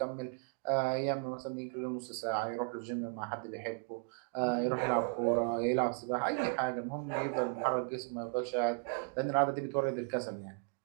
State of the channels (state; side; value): silent; left; 54 dB below the other